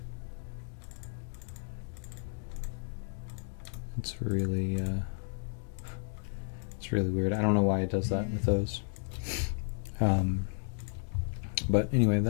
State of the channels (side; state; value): right; silent; digital silence